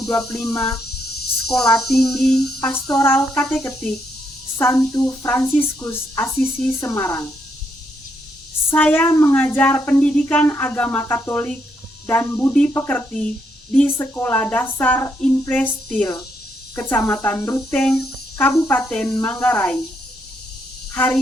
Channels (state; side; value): normal; both; correlation 0.77